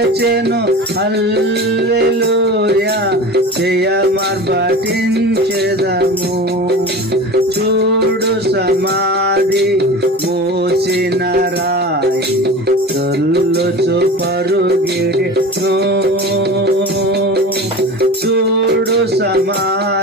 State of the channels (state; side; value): normal; both; correlation 0.33